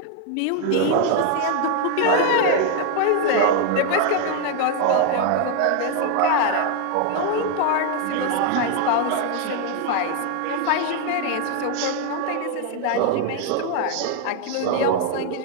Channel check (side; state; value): both; different; correlation 0.01